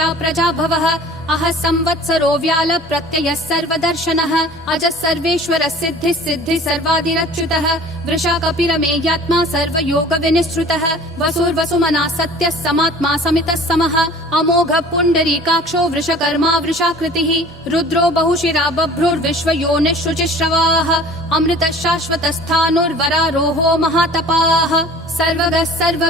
प्रजाभवः अह संवत्सरो व्याल प्रत्ययः सर्वदर्शनः अजः सर्वेश्वरः सिद्धिः सिद्धिः सर्वादिरच्युतः वृषा कपिरमेयात्मा सर्वयोग विनिश्रुतः वसुर्वसुमना सत्यः समात्मा समितः समः अमोघः पुण्डरीकाक्षो वृषकर्मा वृषाकृतिः रुद्रो बहुशिरा बभ्रुर्विश्वयोनिः शुचिश्रवाः अमृतः शाश्वतस्थाणुर्वरारोहो महातपाः सर्वगः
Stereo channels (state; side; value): normal; both; correlation 0.46